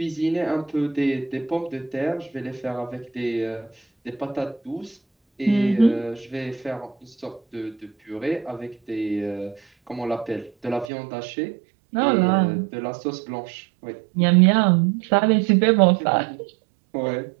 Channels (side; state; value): left; drops out; at 10.9 s